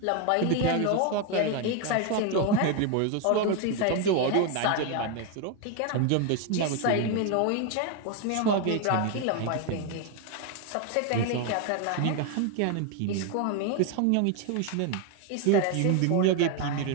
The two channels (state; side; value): different; both; correlation 0.01